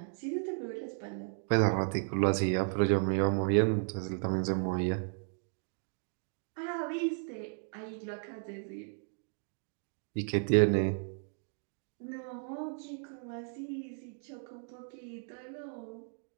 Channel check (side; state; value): left; silent; 55 dB below the other